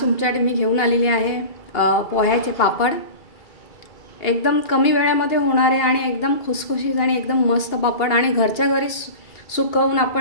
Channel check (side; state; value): right; late; 2.8 ms